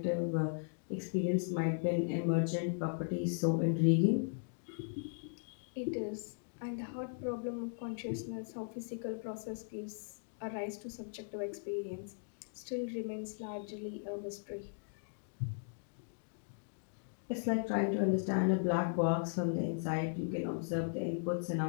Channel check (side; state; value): right; silent; digital silence